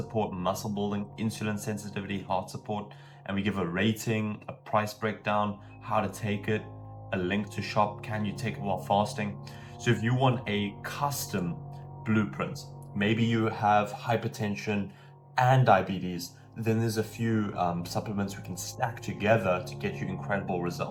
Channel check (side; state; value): both; identical; correlation 1.00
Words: muscle building, insulin sensitivity, heart support. And we give a rating, a price breakdown, how to take it, a link to shop, can you take it while fasting? So if you want a custom blueprint, maybe you have hypertension and diabetes, then there's a few supplements we can stack together to get you incredible